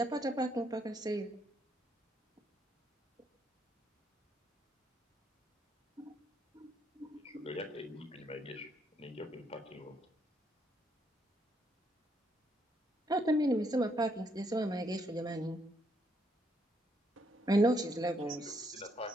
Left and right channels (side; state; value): both; normal; correlation 0.74